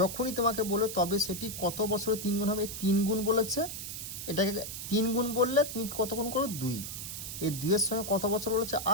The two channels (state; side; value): noise; right; hiss, 7 dB below the sound